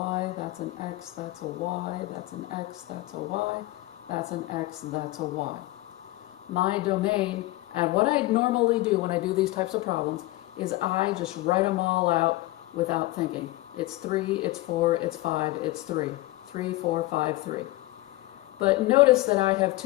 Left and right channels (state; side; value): quieter; right; 18.9 dB